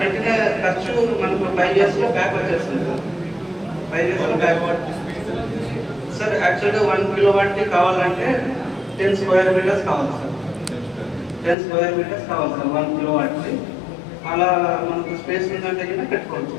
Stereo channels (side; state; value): right; drops out; at 11.6 s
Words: పెట్టిన ఖర్చు మనకు 5 yearsలో బ్యాక్ వచ్చేస్తుంది సార్. 5 yearsలో బ్యాక్ సార్. యాక్చువల్గా 1 kilowatt కావాలంటే 10 square meters కావాలి సార్. 10 square meters కావాలి సార్ 1 kilowatt. అలా మనకు స్పేస్ ఉందంటే కూడా పెట్టుకోవచ్చు